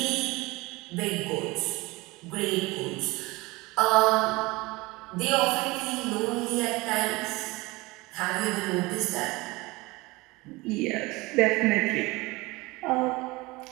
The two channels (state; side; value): quieter; left; 22.5 dB